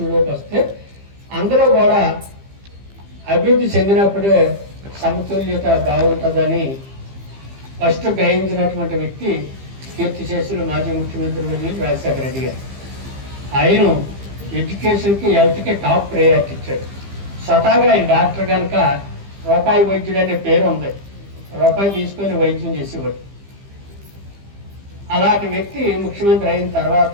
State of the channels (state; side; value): late; left; 15 ms